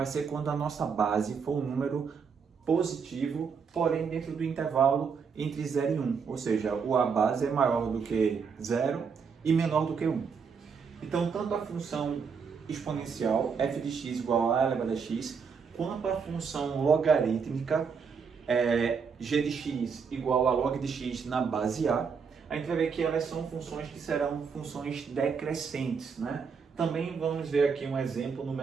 ser quando a nossa base for um número positivo, porém dentro do intervalo entre 0 e 1. Ou seja, o a base é maior do que 0 e menor do que 1. Então, tanto a função exponencial f de x igual a elevado a x, quanto a função logarítmica g de x igual a log de x na base A, a gente vai ver que elas são funções que serão funções decrescentes, né? Também vamos ver aqui um exemplo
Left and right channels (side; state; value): left; quieter; 5.9 dB